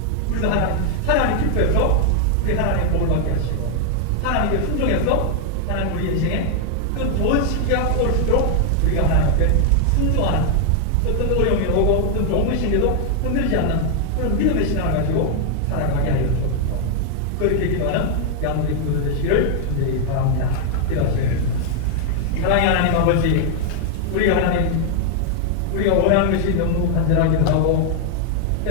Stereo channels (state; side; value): different; both; correlation 0.00